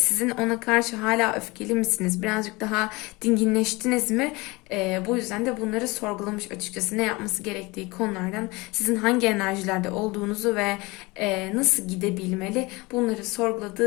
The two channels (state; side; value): quieter; right; 23.9 dB